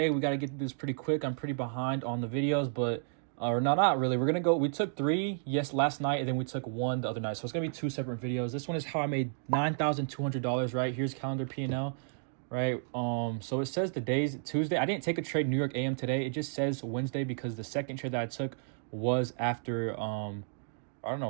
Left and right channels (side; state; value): left; silent; digital silence